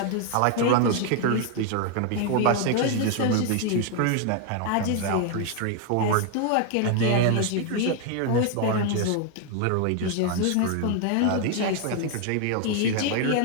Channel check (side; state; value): both; different; correlation 0.00